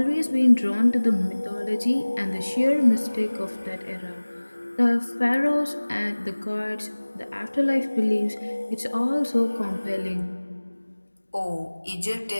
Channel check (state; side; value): inverted; both; correlation -1.00